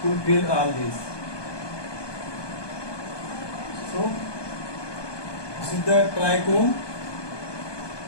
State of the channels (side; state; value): right; late; 1.2 ms